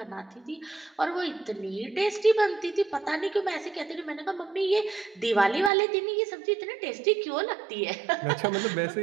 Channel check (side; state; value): left; drops out; at 5.7 s